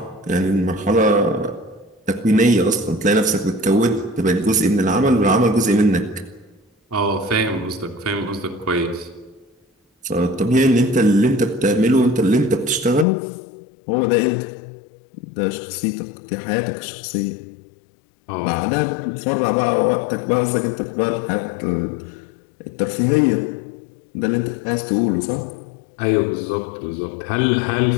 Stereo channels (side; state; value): right; drops out; at 13.1 s